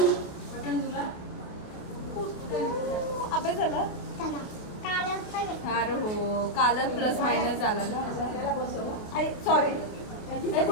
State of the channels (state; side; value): late; right; 28 ms